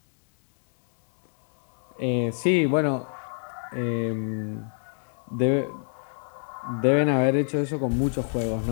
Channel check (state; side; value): silent; right; 61 dB below the other